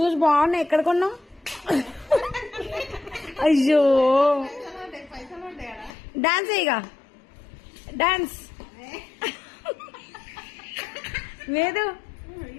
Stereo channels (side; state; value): right; drops out; at 5.9 s